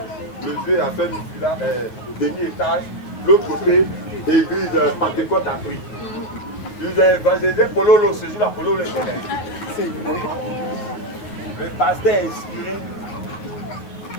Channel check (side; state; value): right; late; 9.7 ms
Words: le vieux a fait une villa, demi-étage. L'autre côté, église Pentecôte a pris. Ils ont évangélisé Pololo, ce jour-là, Pololo est là. Le pasteur est inspiré.